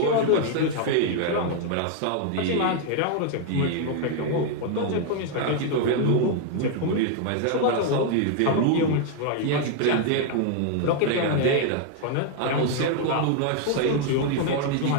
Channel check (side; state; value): both; different; correlation 0.00